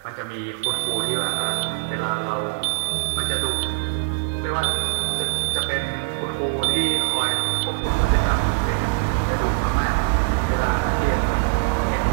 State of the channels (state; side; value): silent; left; digital silence